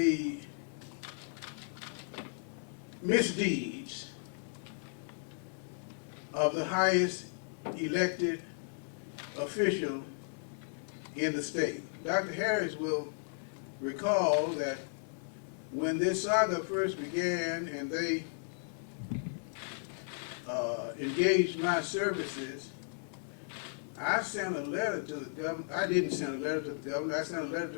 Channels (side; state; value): right; silent; 54 dB below the other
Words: misdeeds of the highest elected official in the state. Dr. Harris will recall that when this saga first began and they engaged my services, I sent a letter to the governor. I didn't send a letter to the governor. I sent a letter to